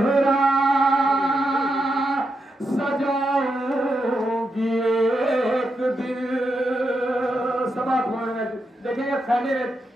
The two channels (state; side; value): normal; both; correlation 0.84